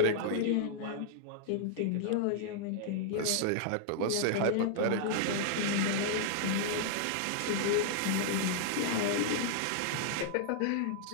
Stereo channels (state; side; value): different; both; correlation -0.01